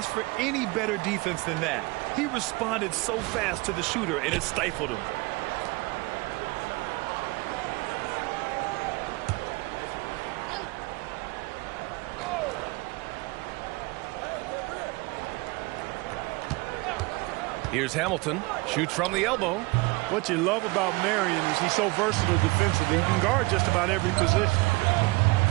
for any better defense than that. He responded so fast to the shooter, and it stifled him. Here's Hamilton. Shoots from the elbow. What you love about Marion is he's so versatile defensively. He can guard just about every position.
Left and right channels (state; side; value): quieter; left; 24.4 dB